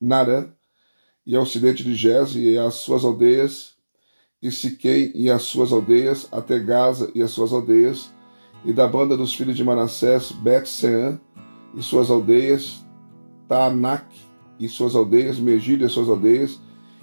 e ao ocidente de Gez e as suas aldeias, e Siquém e as suas aldeias, até Gaza e as suas aldeias, e da banda dos filhos de Manassés, Bet-Seã e suas aldeias, Taanac e suas aldeias, Megiddo e as suas aldeias,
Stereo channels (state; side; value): inverted; both; correlation -1.00